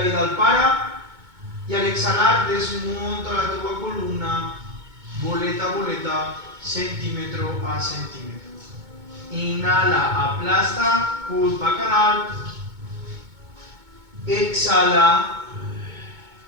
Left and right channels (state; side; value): late; left; 2.2 ms